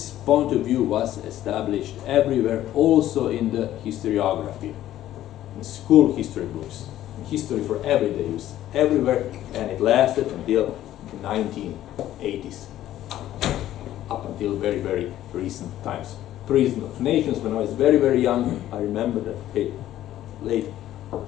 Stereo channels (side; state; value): right; quieter; 13.1 dB